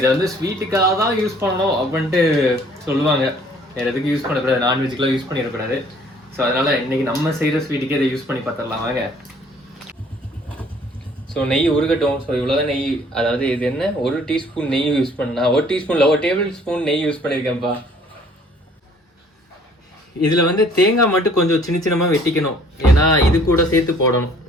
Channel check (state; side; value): normal; both; correlation 0.58